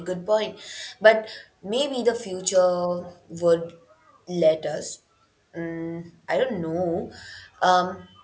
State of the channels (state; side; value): identical; both; correlation 1.00